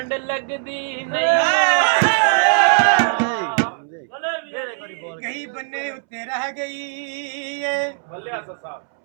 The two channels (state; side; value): silent; left; 65 dB below the other